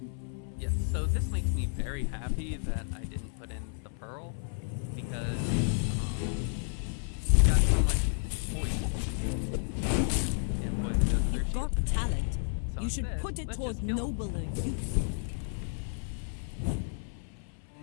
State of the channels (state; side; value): silent; right; 57 dB below the other